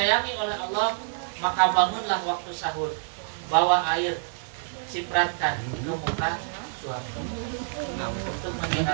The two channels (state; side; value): silent; left; 60 dB below the other